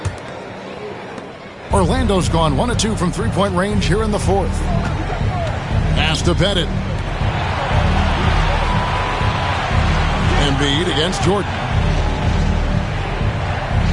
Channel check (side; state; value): both; identical; correlation 1.00